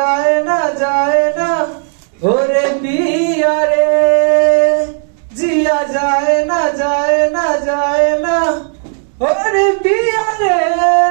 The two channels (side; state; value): left; silent; 61 dB below the other